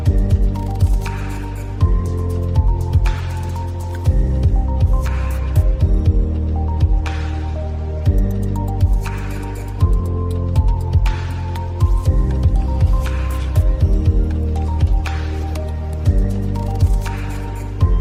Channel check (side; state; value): both; identical; correlation 1.00